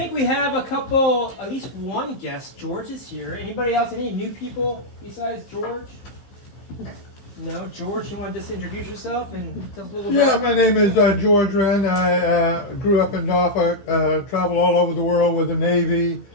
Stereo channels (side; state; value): right; late; 15 ms